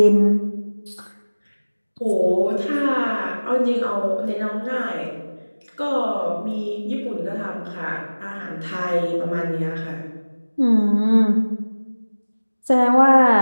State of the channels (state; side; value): inverted; both; correlation -1.00